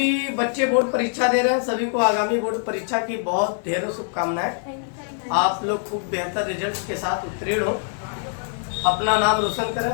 बच्चे बोर्ड परीक्षा दे रहे हैं सभी को आगामी बोर्ड परीक्षा की बहुत ढेरों शुभकामनाएं। आप लोग खूब बेहतर रिजल्ट के साथ उत्तीर्ण हो, अपना नाम रोशन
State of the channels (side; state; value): right; silent; 63 dB below the other